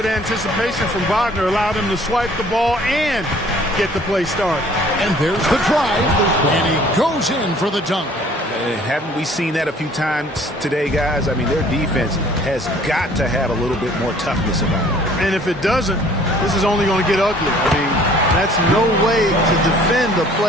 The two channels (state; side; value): normal; both; correlation 0.55